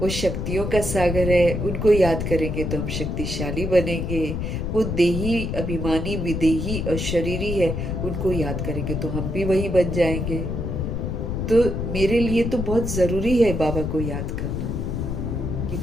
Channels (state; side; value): noise; left; rumble, 2 dB below the sound